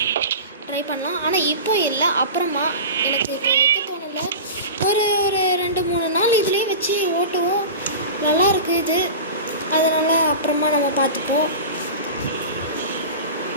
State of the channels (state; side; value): inverted; both; correlation -0.31